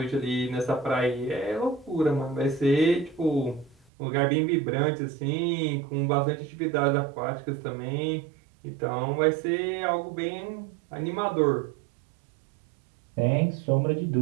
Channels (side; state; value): left; drops out; at 3.9 s